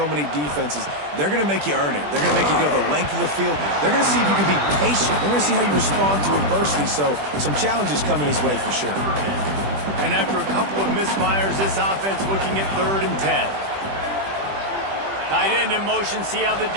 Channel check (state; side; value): late; left; 20 ms